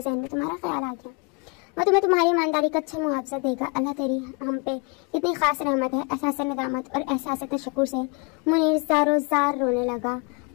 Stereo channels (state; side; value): quieter; right; 32.7 dB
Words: जहन में तुम्हारा ख्याल आ गया। वो तुम्हें तुम्हारी ईमानदारी का अच्छा मुआवजा देगा। अल्लाह तेरी हम पे इतनी खास रहमत है। एहसास नदामत और एहसास तशक्कुर से मुनीर ज़ारो ज़ार रोने लगा।